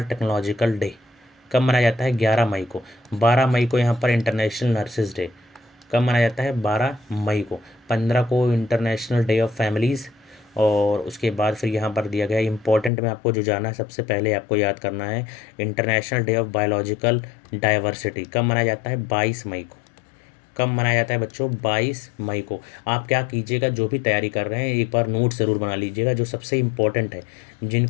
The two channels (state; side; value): drops out; right; at 12.9 s